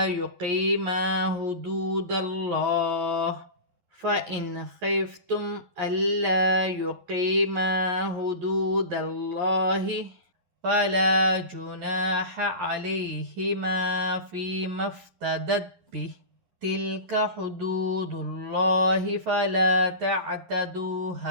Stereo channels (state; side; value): late; left; 11 ms